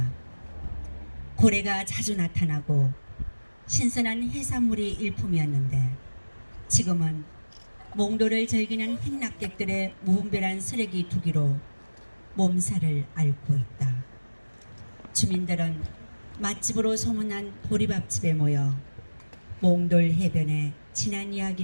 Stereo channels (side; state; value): both; inverted; correlation -1.00